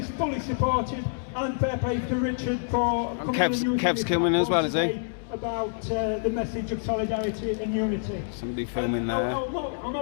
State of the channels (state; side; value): silent; right; 60 dB below the other